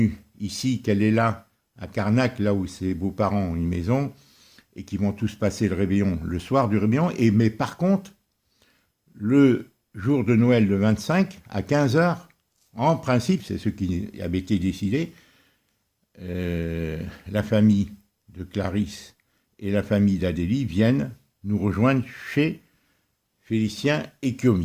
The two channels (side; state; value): both; identical; correlation 1.00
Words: ici, qu'elle est là à Carnac, là où ses beaux-parents ont une maison et qui vont tous passer le réveillon le soir du réveillon. Mais par contre, le jour de Noël, le 25, à 15h, en principe, c'est ce qui avait été décidé, la famille de Clarisse et la famille d'Adélie viennent nous rejoindre chez Félicien et